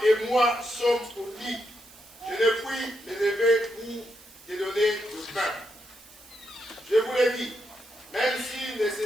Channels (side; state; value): right; noise; hiss, 23 dB below the sound